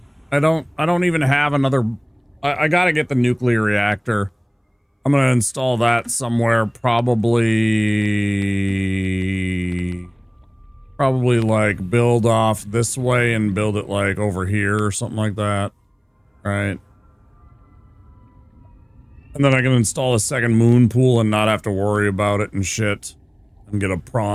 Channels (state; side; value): identical; both; correlation 1.00